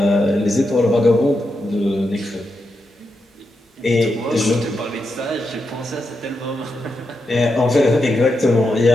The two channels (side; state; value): both; normal; correlation 0.85